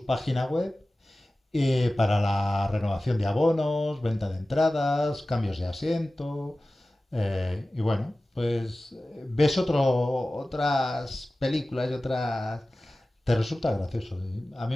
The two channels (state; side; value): normal; both; correlation 0.96